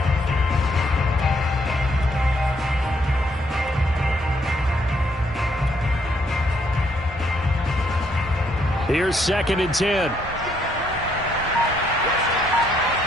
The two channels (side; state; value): both; normal; correlation 0.71